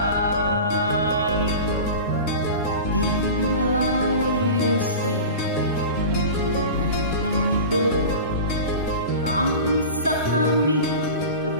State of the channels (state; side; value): inverted; both; correlation -0.32